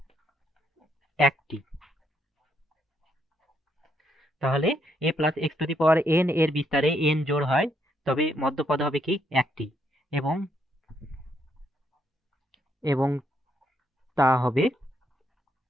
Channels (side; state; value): both; normal; correlation 0.75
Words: একটি। তাহলে a plus x two the power n এর বিস্তারে n জোড় হয় তবে মধ্যপদ হবে কি, একটি, এবং এবং তা হবে